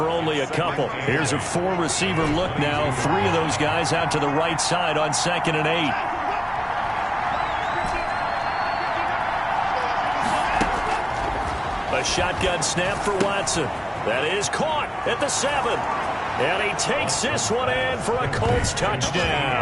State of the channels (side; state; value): both; identical; correlation 1.00